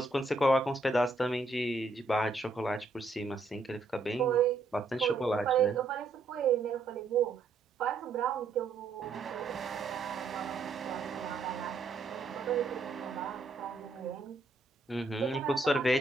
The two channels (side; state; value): left; quieter; 3.5 dB